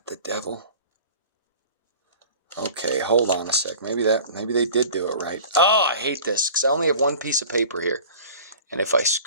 the devil? Okay, hold on a sec. Maybe they did do it right. Oh, I hate this because I only have one piece of paper here. And if I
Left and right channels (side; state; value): both; inverted; correlation -0.42